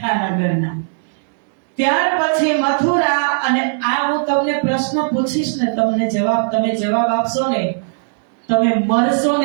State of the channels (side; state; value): left; silent; digital silence